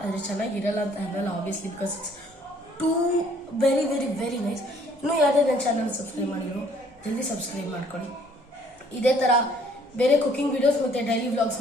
ಆದರೆ ಚೆನ್ನಾಗಿರಲ್ಲ ಅಂತ ಅನ್ನಲ್ಲ, obviously, because it's two very very very nice. ಇನ್ನೂ ಯಾವುದೇ ನನ್ನ ಚಾನಲ್ ಸಬ್ಸ್ಕ್ರೈಬ್ ಮಾಡಿರೋ ಜಲ್ದಿ ಸಬ್ಸ್ಕ್ರೈಬ್ ಮಾಡ್ಕೊಳ್ಳಿ. ಇದೇ ಥರ ಬೇರೆ ಕುಕಿಂಗ್ ವಿಡಿಯೋಸ್ ಮತ್ತು ಡೈಲಿ ವ್ಲಾಗ್ಸ್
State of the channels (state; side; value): normal; both; correlation 0.60